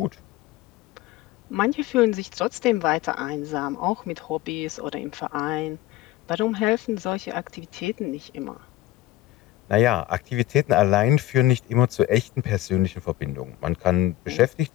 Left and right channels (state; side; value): quieter; right; 15.7 dB